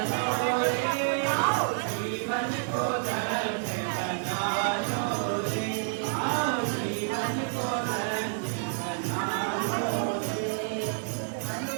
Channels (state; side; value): silent; left; digital silence